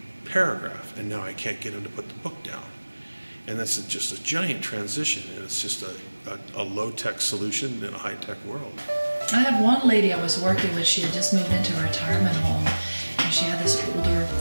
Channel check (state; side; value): inverted; both; correlation -1.00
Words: paragraph, and now I can't get him to put the book down. And that's just a giant transition, and it's just a low-tech solution in a high-tech world. I had one lady I was working with. She had just moved into a retirement home, and she had this older,